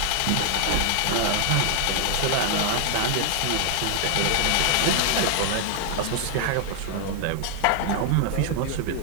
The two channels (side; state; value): both; different; correlation 0.00